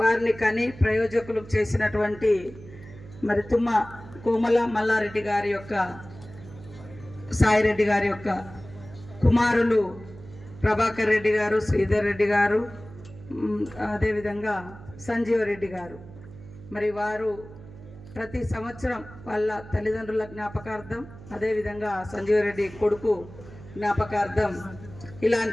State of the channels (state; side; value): noise; right; hum, 17 dB below the sound